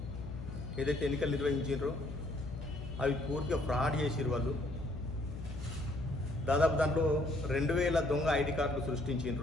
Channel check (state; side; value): noise; left; hum, 8 dB below the sound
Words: ఏదైతే ఎన్నికలు నిర్వహించారో అవి పూర్తిగా ఫ్రాడ్ చేసిరు. వాళ్ళు దాదాపు దాంట్లో 2000 దొంగ ఐడి కార్డులు